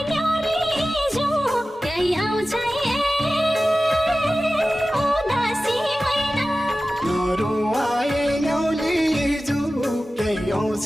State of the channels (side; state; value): both; normal; correlation 0.95